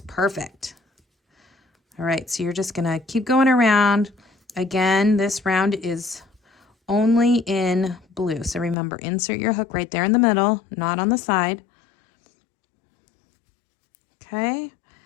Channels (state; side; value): drops out; right; at 8.8 s